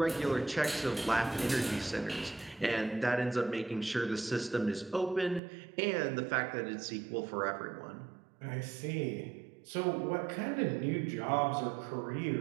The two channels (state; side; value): drops out; left; at 5.4 s